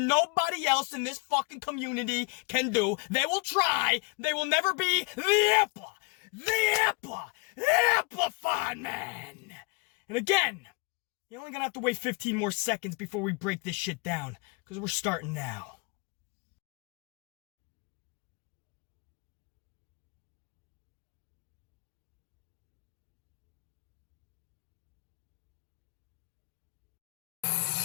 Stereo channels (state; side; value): quieter; right; 28.2 dB